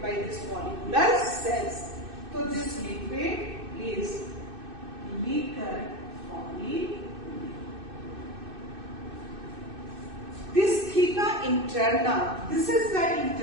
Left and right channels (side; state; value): left; late; 2.6 ms